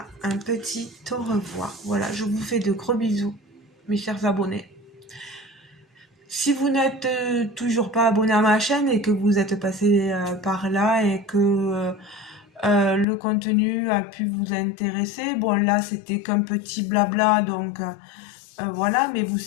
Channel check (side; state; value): right; drops out; at 13.1 s